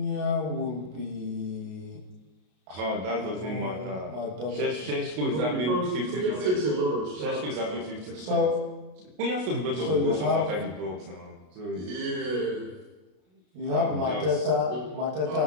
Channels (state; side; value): late; left; 33 ms